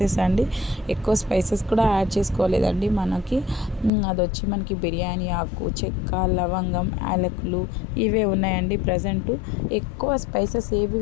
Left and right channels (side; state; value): right; drops out; at 3.9 s